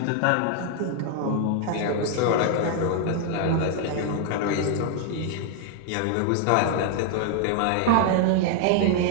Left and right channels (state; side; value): different; both; correlation 0.00